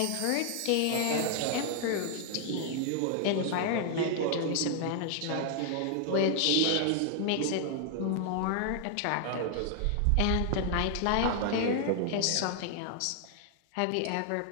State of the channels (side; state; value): both; different; correlation 0.00